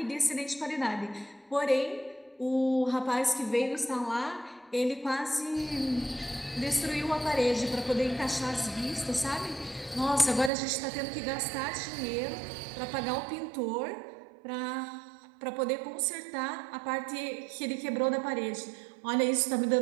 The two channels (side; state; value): left; drops out; at 10.5 s